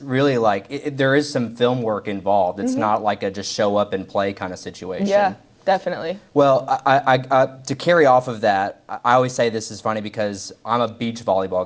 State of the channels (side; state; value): both; identical; correlation 1.00